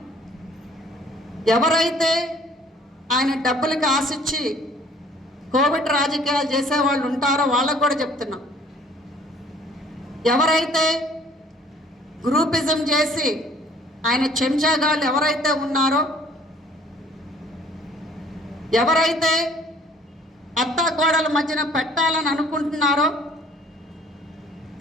ఎవరైతే ఆయన డబ్బులకి ఆశించి కోవిడ్ రాజకీయాలు చేసేవాళ్ళు ఉంటారో వాళ్ళకు కూడా చెప్తున్నాం, ఎవరైతే గ్రూపిజం చేసి ఆయన చెంచాగాళ్ళు ఎవరైతే ఉన్నారో, ఎవరైతే అత్తాకోడల మధ్యన పెట్టాలని అనుకుంటున్నారో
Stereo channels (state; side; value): normal; both; correlation 0.55